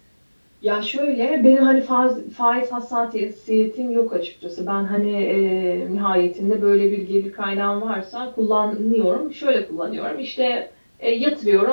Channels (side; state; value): both; inverted; correlation -1.00